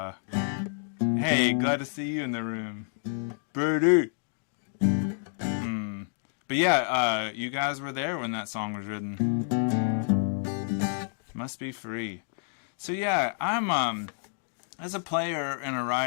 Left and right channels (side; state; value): right; silent; digital silence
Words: hey, glad to see you in the room. Birdie. But yeah, you guys were there when that song was written. Must be free. So yeah, I'm as a player and a